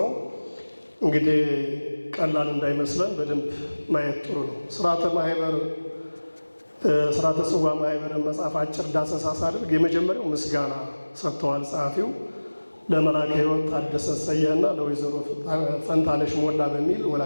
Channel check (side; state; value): both; inverted; correlation -1.00